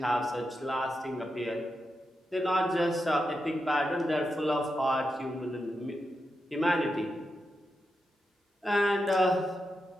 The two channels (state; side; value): normal; both; correlation 0.87